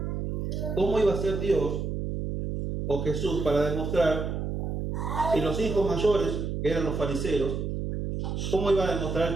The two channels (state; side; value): noise; right; hum, 3 dB below the sound